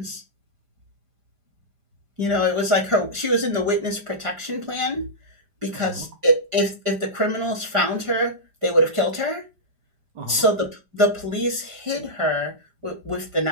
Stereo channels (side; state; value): left; late; 5.0 ms